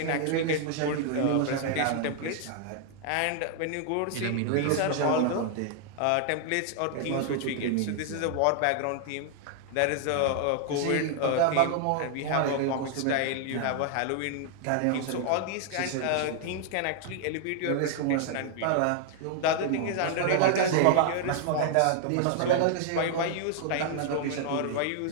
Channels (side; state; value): both; different; correlation 0.00